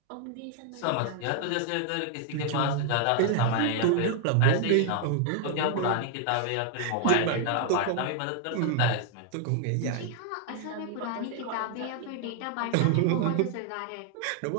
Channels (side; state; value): both; different; correlation 0.00